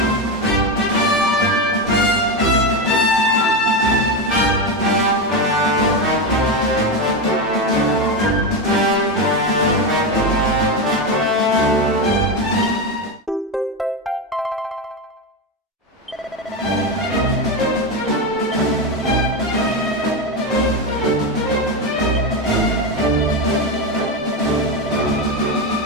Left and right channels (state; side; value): normal; both; correlation 0.14